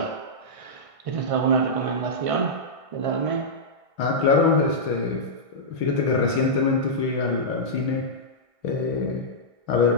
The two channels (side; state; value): left; late; 1.6 ms